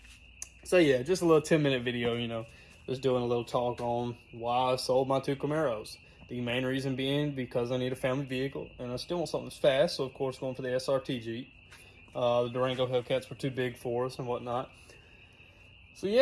so yeah, just a little 10-minute video, you know. Just doing a little talk on why I sold my 2 Camaros. The main reason being because I need a family vehicle, and I still want something that's fast, so of course going for the SRT Jeep. The Durango Hellcats were too big for us and whatnot. So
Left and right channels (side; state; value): both; identical; correlation 1.00